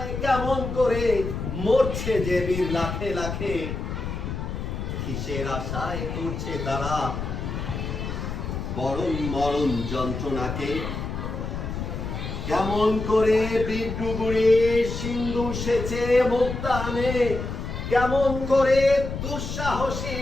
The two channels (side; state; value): left; noise; rumble, 5 dB below the sound